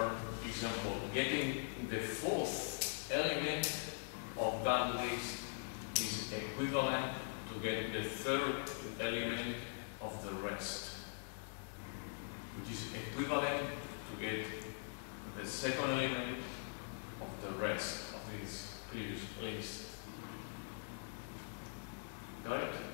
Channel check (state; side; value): silent; right; digital silence